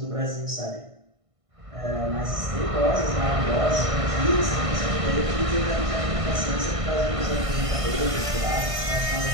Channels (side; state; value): left; late; 1.6 ms